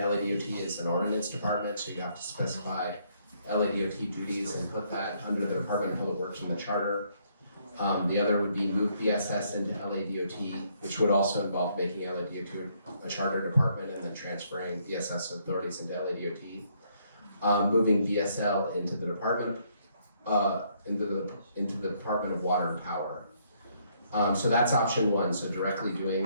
is an ordinance department, so you have to specify LADOT duties and put that under the Department of Public Works in the charter. The other would be move BSS into LADOT, which would also involve making LADOT a charter department and then transferring BSS authorities into LADOT. Moving BSL into the department, into the Department of Water and Power. So that's option one, so directly doing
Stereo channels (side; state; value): both; inverted; correlation -0.70